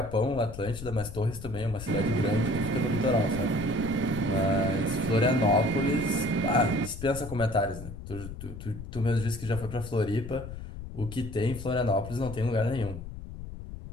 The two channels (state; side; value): noise; left; rumble, 10 dB below the sound